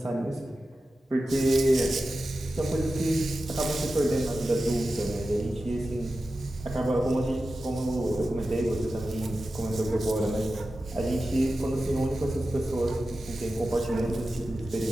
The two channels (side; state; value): both; normal; correlation 0.93